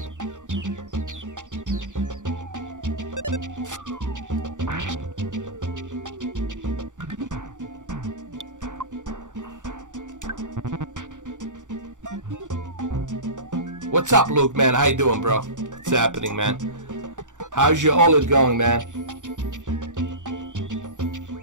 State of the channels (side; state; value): left; late; 0.86 ms